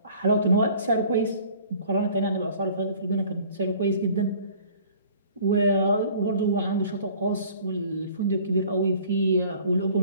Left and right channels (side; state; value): both; inverted; correlation -0.50